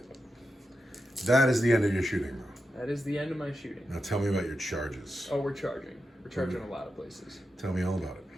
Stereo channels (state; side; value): normal; both; correlation 0.89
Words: That is the end of your shooting, bro. That is the end of my shooting. Now tell me about your charges. Oh, we're charging. We're charging a lot of places. Tell me all about it.